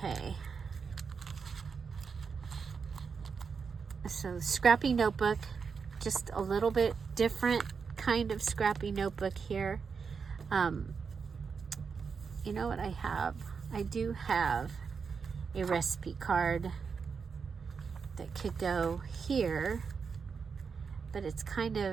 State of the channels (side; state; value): left; quieter; 5.7 dB